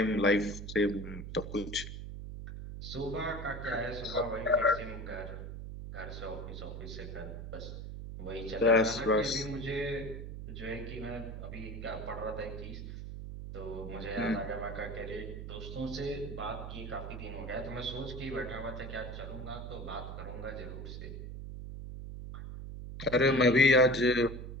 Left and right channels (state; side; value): noise; right; hum, 8 dB below the sound